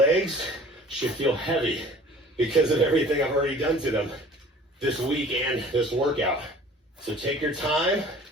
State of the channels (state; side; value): normal; both; correlation 0.48